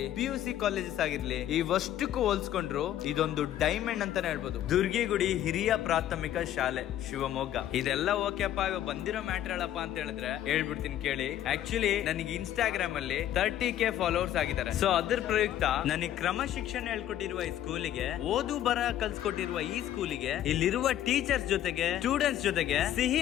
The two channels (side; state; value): right; quieter; 11.8 dB